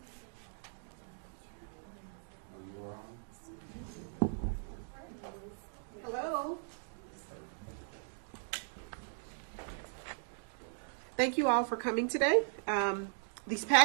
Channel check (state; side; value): silent; left; digital silence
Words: Oh, you are on? Hello. Thank you all for coming today. These